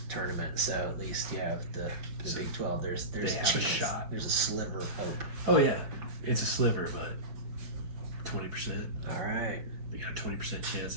tournament. So at least you have the So Big 12. There's they a have a chance. shot. There's a sliver of hope. Oh yeah, it's a sliver, but 20%. All right. They got a 20% chance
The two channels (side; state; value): left; late; 5.1 ms